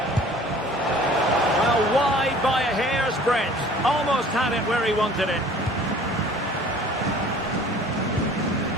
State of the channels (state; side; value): normal; both; correlation 0.49